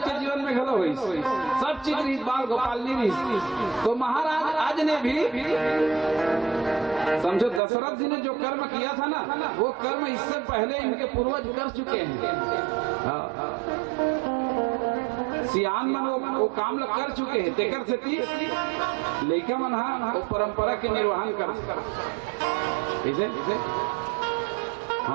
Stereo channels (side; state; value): left; drops out; at 7.6 s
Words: जीवन में घलो हुई, सब चीज रही, बाल गोपाल नहीं रही। तो महाराज आज ने भी समझो दशरथ जी ने जो कर्म किया था ना, वो कर्म इससे पहले इनके पूर्वज कर चुके हैं। सियान मन वो काम कर चुके हैं। तेकर से लड़का मन वो परंपरा के निर्वहन कर